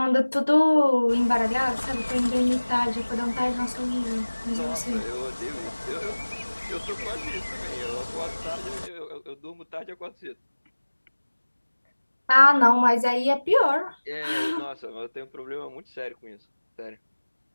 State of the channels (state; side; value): inverted; both; correlation -1.00